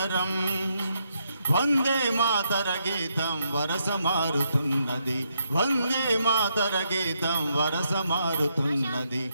వందే మాతర గీతం వరస మారుతున్నది, వందే మాతర గీతం వరస మారుతున్నది.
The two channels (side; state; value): both; inverted; correlation -0.78